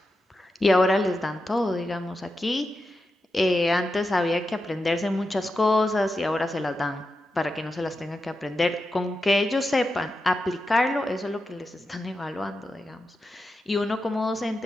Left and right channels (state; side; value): normal; both; correlation 0.89